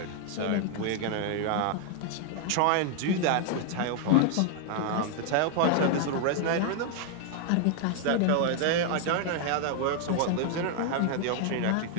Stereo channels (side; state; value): both; different; correlation 0.00